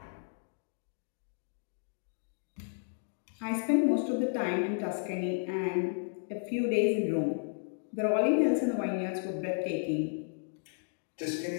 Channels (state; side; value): silent; right; digital silence